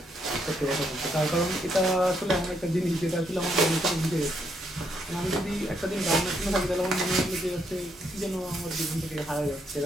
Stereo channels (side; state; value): both; normal; correlation 0.75